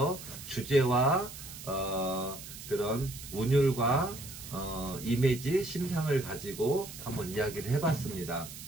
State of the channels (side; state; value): right; noise; hiss, 13 dB below the sound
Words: 주제와 그런 운율과 이미지, 심상을 가지고 한번 이야기를 해봤습니다.